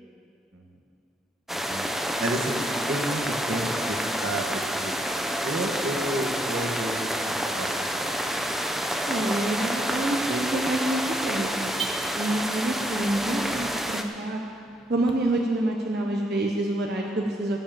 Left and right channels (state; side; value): normal; both; correlation 0.74